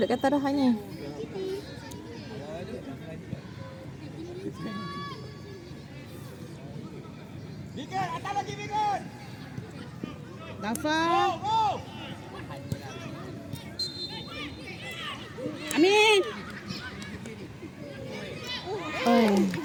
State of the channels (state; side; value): identical; both; correlation 1.00